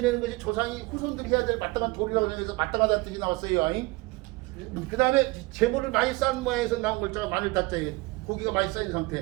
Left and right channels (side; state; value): left; quieter; 23.1 dB